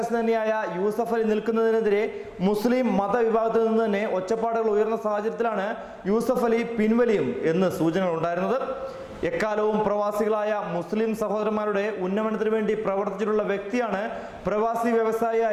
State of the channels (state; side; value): identical; both; correlation 1.00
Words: തന്നെയായ യൂസഫ് അലി നിൽക്കുന്നതിനെതിരെ മുസ്ലിം മതവിഭാഗത്തിൽ നിന്ന് തന്നെ ഒച്ചപ്പാടുകൾ ഉയർന്ന സാഹചര്യത്തിലാണ് യൂസഫ് അലി പിൻവലിയും എന്ന് സൂചനകൾ ഉണ്ടായിരുന്നത്. എക്കാലവും പ്രവാസികളായ മുസ്ലിം സഹോദരന്മാരുടെ ഉന്നമനത്തിന് വേണ്ടി പ്രവർത്തിച്ചിട്ടുള്ള വ്യക്തിയാണ് പ്രവാസി